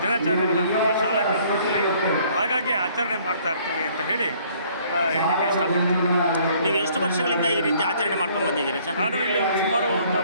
ದಿನಾಚರಣೆಗಳನ್ನು ಶಾಲಾ ಕಾಲೇಜಲ್ಲಿ ಹಾಗಾಗಿ ಆಚರಣೆ ಮಾಡ್ತಾ ಇರ್ತೀವಿ ಅಂತ ಹೇಳಿ ಹೇಳಲಿಕ್ಕೆ ಇಷ್ಟಪಡ್ತೀನಿ. ನೀವು ಎಷ್ಟು ವರ್ಷಗಳಿಂದ ಈ ರೀತಿ ಆಚರಣೆ ಮಾಡ್ಕೊಂಡು ಬಂದಿದ್ದೀರಿ ಸರ್? ನಾನು ಇಲ್ಲಿ ಸುಮಾರು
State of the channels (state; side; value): inverted; both; correlation -0.60